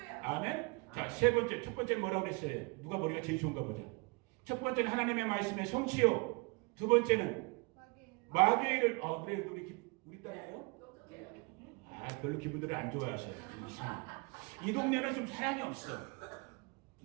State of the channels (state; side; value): quieter; left; 28.8 dB